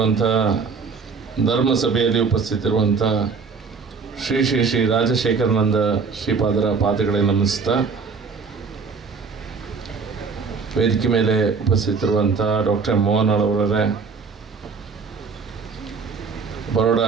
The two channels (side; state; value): left; quieter; 5.1 dB